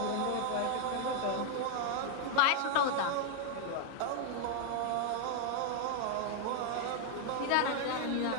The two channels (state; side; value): different; both; correlation 0.00